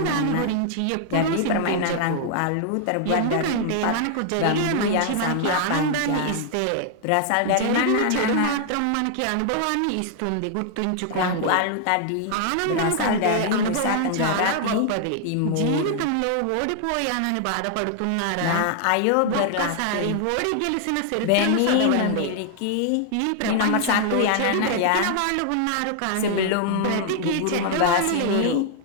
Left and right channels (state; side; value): different; both; correlation 0.00